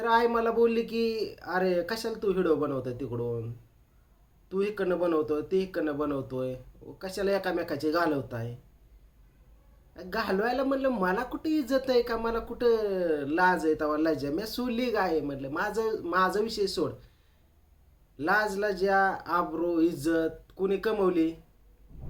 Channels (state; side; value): identical; both; correlation 1.00